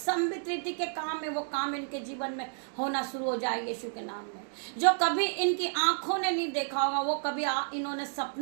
रीति के काम है वो काम इनके जीवन में होना शुरू हो जाए यीशु के नाम में। जो कभी इनकी आंखों ने नहीं देखा होगा, वो कभी इन्होंने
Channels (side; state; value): left; silent; digital silence